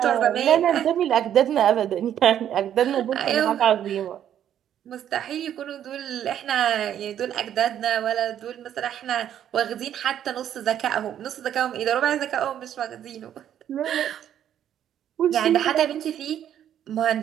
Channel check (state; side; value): quieter; left; 10.3 dB